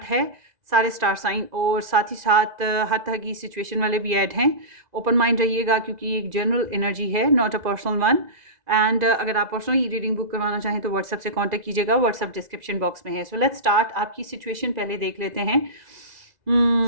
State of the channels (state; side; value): late; left; 2.0 ms